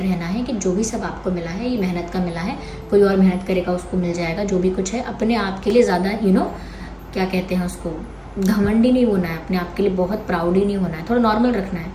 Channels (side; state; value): both; identical; correlation 1.00